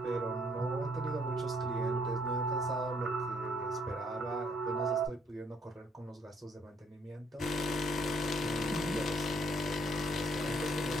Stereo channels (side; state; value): both; normal; correlation 0.66